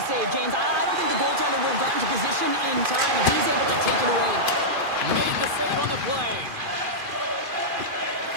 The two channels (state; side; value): late; left; 2.4 ms